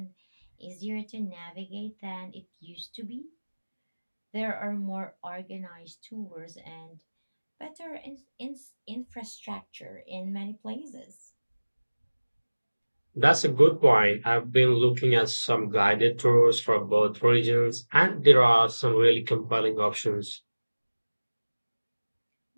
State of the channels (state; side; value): inverted; both; correlation -1.00